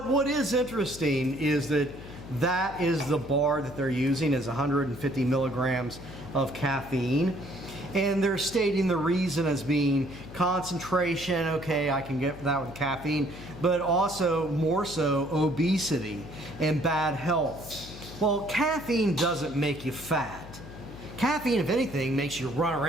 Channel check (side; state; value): left; noise; hum, 15 dB below the sound